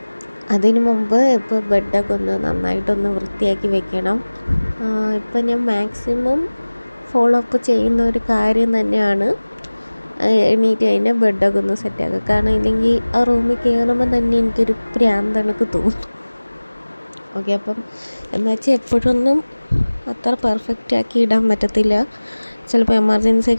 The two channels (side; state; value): both; inverted; correlation -1.00